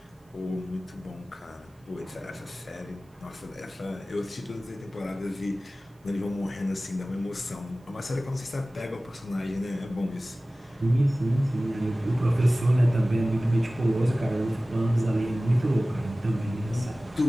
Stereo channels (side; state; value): both; normal; correlation 0.97